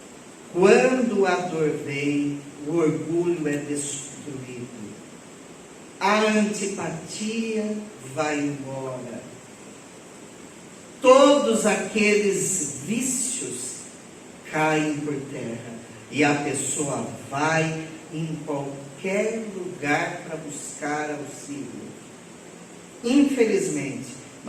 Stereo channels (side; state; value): both; identical; correlation 1.00